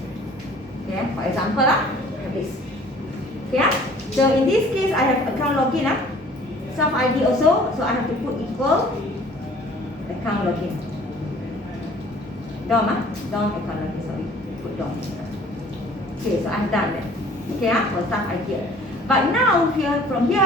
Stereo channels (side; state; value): both; normal; correlation 0.52